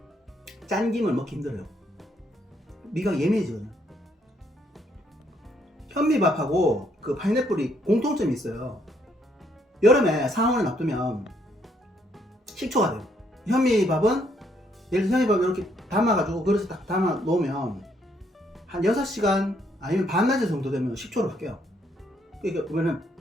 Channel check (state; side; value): normal; both; correlation 0.71